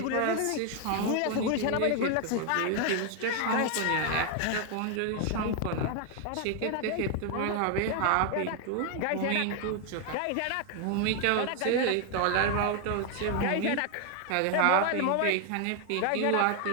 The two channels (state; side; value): different; both; correlation 0.01